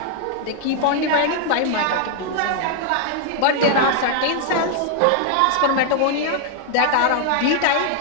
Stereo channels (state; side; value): different; both; correlation 0.00